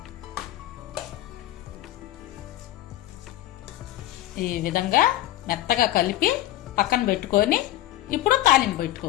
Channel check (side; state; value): right; quieter; 14.8 dB